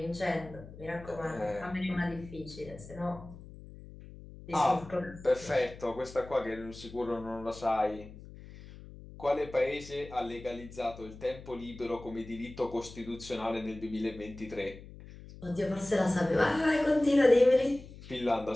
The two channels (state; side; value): noise; left; hum, 16 dB below the sound